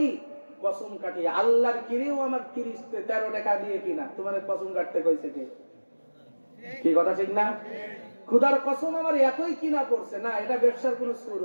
কসম কাটি। আল্লাহর কিরেও আমার 13 টাকা দিয়ে কিনা, তোমার কসম কাটতে কইছে কে? কি কথা ঠিক না। খুদার কসম আমার এতই কিনা পড়ছে না, এটা ব্যবসার কোনো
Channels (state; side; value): inverted; both; correlation -1.00